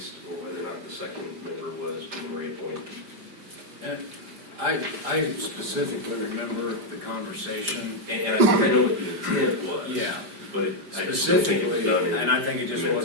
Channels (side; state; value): left; late; 5.0 ms